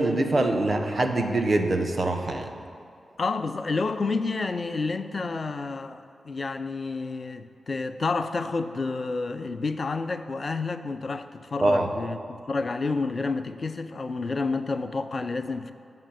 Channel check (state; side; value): normal; both; correlation 0.89